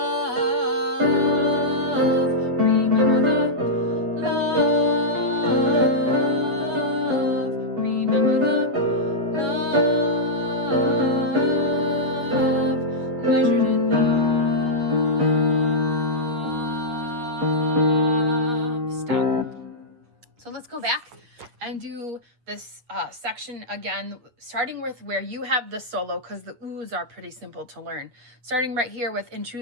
remember the love, remember the love, measured in love. Stop. So let's go back and do this section again, starting with where you have the solo, because the oohs are pretty simple to learn. Starting right here with in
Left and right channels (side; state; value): left; late; 8.3 ms